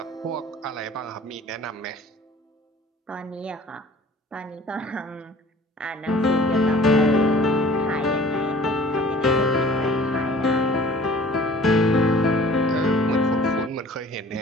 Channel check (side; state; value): both; normal; correlation 0.49